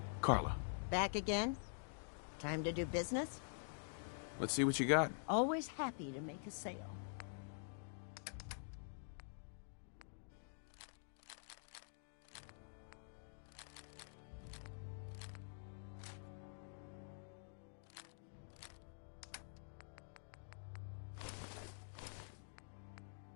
Carla, Back again? Time to do business? let's see what you got. Always happy to make a sale.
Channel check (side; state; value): right; silent; digital silence